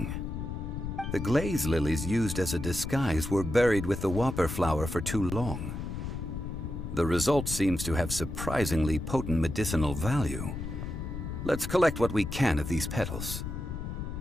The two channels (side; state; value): left; noise; rumble, 6 dB below the sound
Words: The glaze lilies used as a disguise were buried with the whopper flower for too long. The result seems to have surprisingly potent medicinal value. Let's collect what we can of these petals.